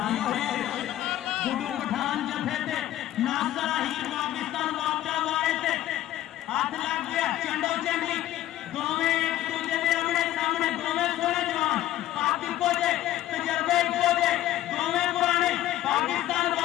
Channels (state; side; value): quieter; right; 13.6 dB